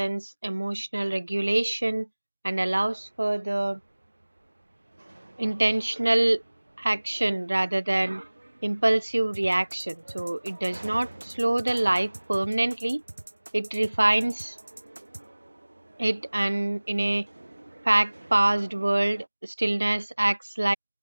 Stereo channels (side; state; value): both; inverted; correlation -1.00